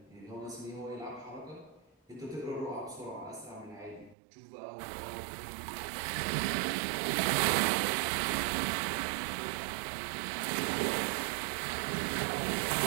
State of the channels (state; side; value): drops out; left; at 4.2 s